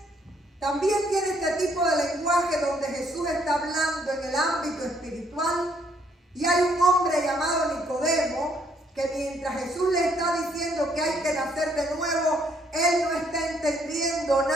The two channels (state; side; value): normal; both; correlation 0.68